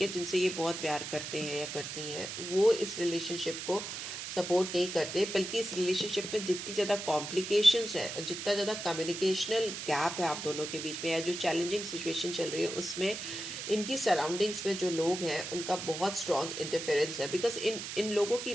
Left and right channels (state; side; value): noise; right; hiss, 7 dB below the sound